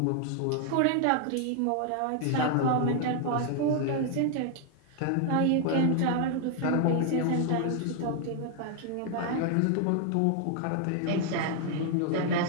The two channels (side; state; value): both; different; correlation 0.00